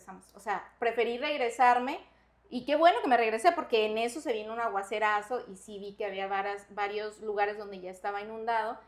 O sea, preferí regresarme y qué bueno que me regresé porque en eso se vino un aguacerazo y sí vi que había varios lugares donde ya estaba inundado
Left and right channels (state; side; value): identical; both; correlation 1.00